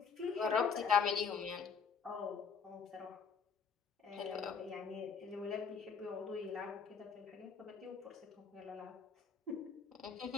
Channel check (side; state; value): right; quieter; 5.9 dB